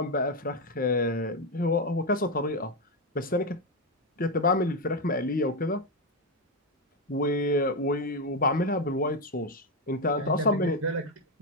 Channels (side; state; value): both; normal; correlation 0.07